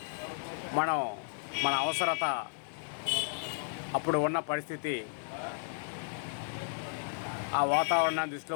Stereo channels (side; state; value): right; silent; digital silence